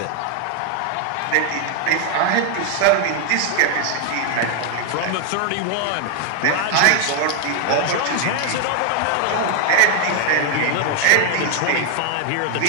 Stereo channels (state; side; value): different; both; correlation 0.00